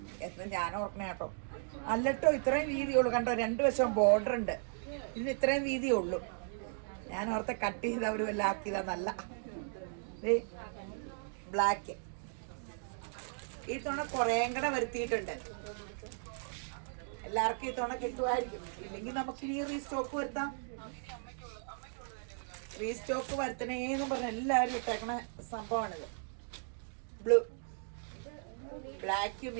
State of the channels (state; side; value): silent; left; digital silence